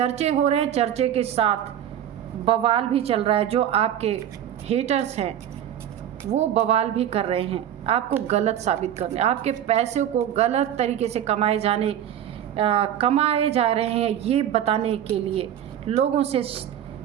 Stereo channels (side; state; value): left; quieter; 10.5 dB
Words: हो रहे हैं, चर्चे के साथ बवाल भी चल रहा है। जो आपके हेटर्स हैं वो बवाल भी कर रहे हैं, आपको गलत साबित करने, आपके पैसे को गलत तरीके से कमाए जा रहे हैं ये बताने के लिए लोगों से